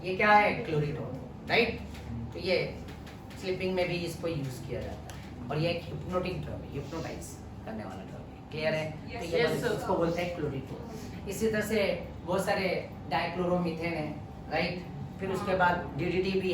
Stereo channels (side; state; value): both; identical; correlation 1.00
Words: ये क्या है, क्लोरीटोन, राइट। तो ये स्लीपिंग में भी इसको यूज किया जाता है, और ये एक हिप्नोटिक ड्रग है, हिप्नोटाइज करने वाला ड्रग है, क्लियर है। तो ये इसको बोलते हैं क्लोरीटोन। इसी तरह से बहुत सारे डाइक्लोरोमीथेन है, राइट, फिर उसके बाद DDT भी